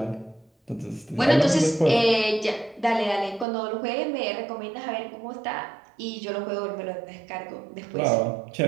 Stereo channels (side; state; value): left; drops out; at 3.5 s